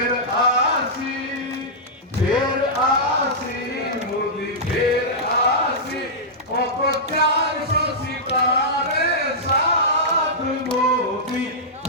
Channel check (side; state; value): both; normal; correlation -0.13